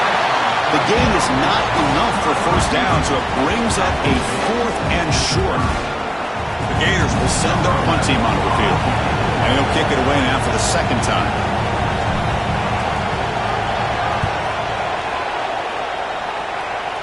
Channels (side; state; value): both; identical; correlation 1.00